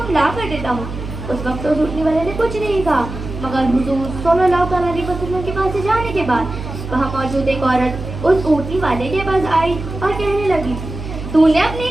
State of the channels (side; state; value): right; noise; hum, 9 dB below the sound